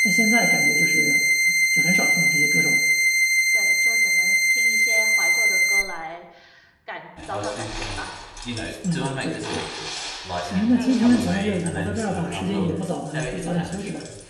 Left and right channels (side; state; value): both; identical; correlation 1.00